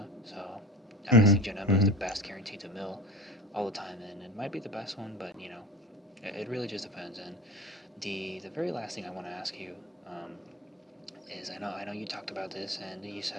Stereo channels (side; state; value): both; normal; correlation 0.33